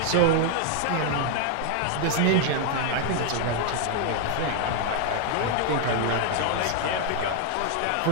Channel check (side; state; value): both; different; correlation 0.00